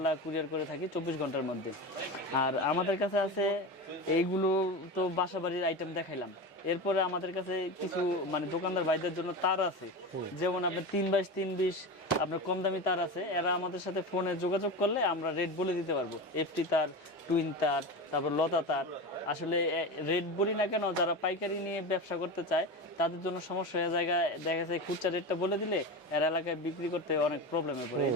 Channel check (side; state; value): both; normal; correlation 0.24